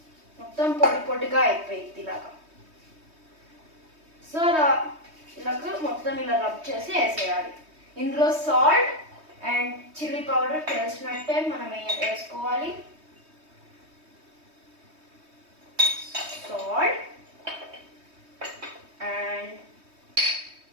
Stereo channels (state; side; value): late; left; 3.2 ms